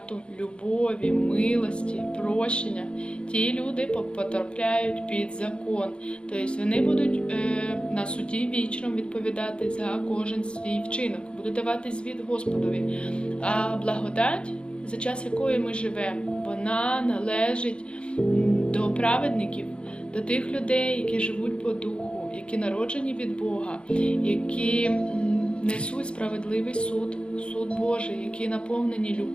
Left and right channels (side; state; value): right; late; 0.056 ms